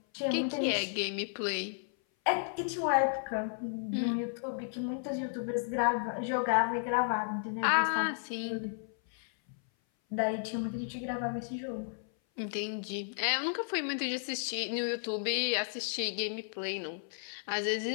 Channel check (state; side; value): silent; right; 55 dB below the other